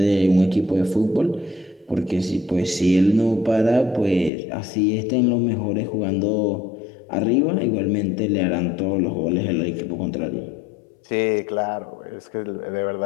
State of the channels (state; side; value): drops out; right; at 4.3 s